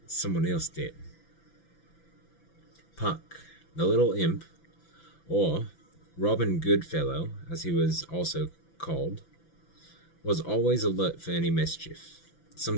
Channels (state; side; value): late; right; 5.9 ms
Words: someone else did. Puck, the little imp, or Robin Goodfellow, as he was also called, was always alert for any mischief.